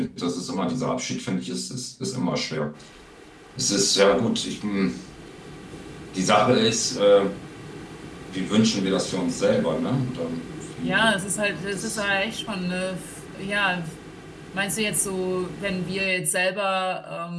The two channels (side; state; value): both; identical; correlation 1.00